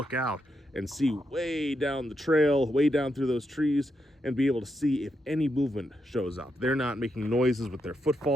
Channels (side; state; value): both; normal; correlation 0.82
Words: out and see way down the trail, way down through those trees, and be able to see if any movement shows up. They're not making noises with their